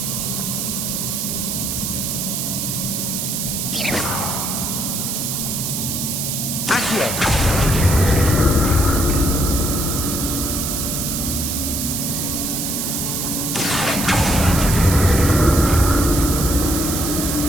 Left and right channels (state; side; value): noise; right; hiss, 2 dB below the sound